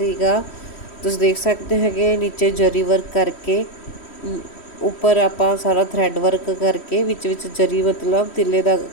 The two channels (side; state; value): right; late; 3.1 ms